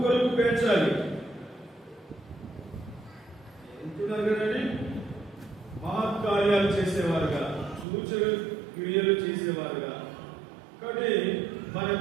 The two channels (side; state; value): left; drops out; at 7.9 s